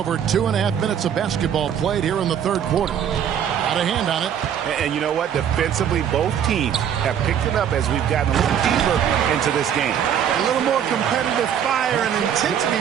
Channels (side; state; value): left; quieter; 8.9 dB